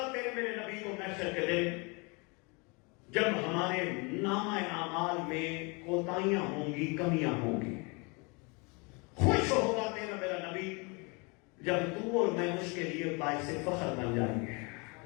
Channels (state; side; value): quieter; right; 30.3 dB